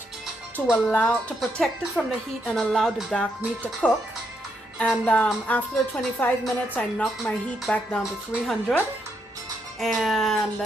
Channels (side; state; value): both; normal; correlation 0.78